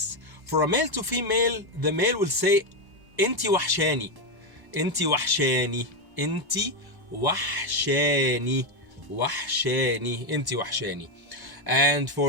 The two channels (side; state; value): left; late; 1.1 ms